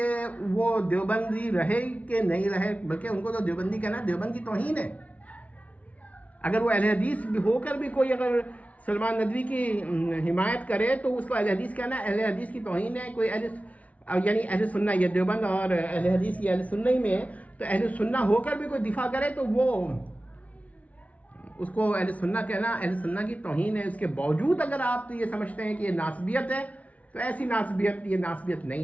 وہ دیوبندی رہے کہ نہیں رہے، بلکہ ان کو تو دیوبندی کہنا دیوبند کی توہین ہے. اگر وہ اہل حدیث ہو کر بھی کوئی اگر سلمان ندوی کی حمایت کرے تو اس کو اہل حدیث کہنا اہل حدیث کی توہین ہے. کوئی یعنی اہل سنہ، یہ دیوبند اور اہل حدیث یہ اہل سنہ ہی میں ہے، تو اہل سنہ ہو کر بھی کوئی دفاع کرے تو وہ اس کو اہل سنہ کہنا اہل سنہ کی توہین ہے. اس کے باوجود اگر آپ یہ سمجھتے ہیں کہ یہ ناسبیت ہے تو ایسی ناسبیت، یہ ناسبیت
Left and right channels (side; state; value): right; late; 0.068 ms